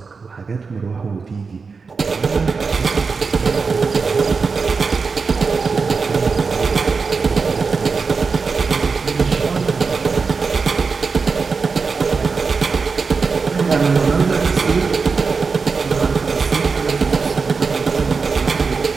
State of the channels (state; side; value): quieter; left; 4.9 dB